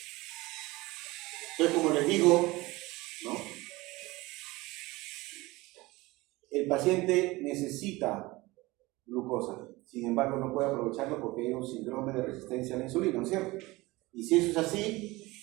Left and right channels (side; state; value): left; quieter; 21.1 dB